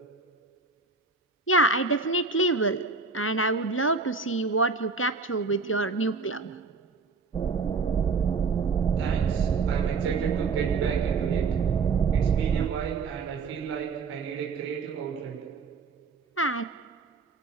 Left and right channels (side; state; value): left; quieter; 4.4 dB